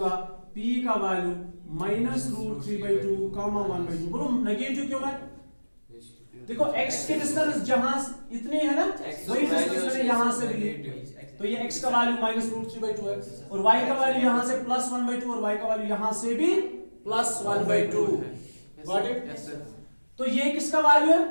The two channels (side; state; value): both; inverted; correlation -1.00